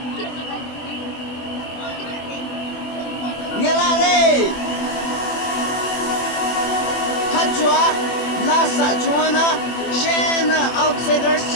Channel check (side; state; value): right; late; 24 ms